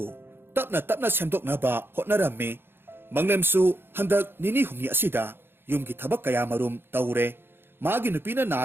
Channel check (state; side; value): late; left; 0.10 ms